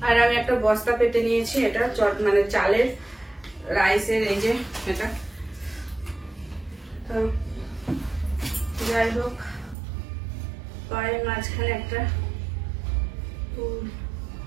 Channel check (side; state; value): left; drops out; at 9.8 s